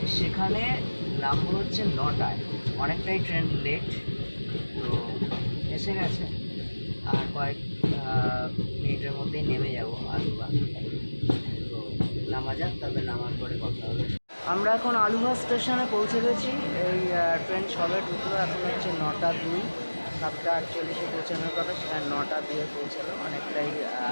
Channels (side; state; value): both; inverted; correlation -1.00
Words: সেখানে নামবো হচ্ছে 9টায়। অনেকটাই ট্রেন লেট, তো এসে গেছে। আর কয়েক মিনিটের মধ্যেই নেমে যাব আলুভা। তো নামা যাক, তবে নামার পরে কথা হবে। আমরা এখন আলুভা স্টেশনে পৌঁছে গেছি। এই ট্রেন সবে ঢুকলো, এখন হচ্ছে 9:02। 7:48 পৌঁছানোর কথা, সেখানে 9:02 পৌঁছালো। অনেকটাই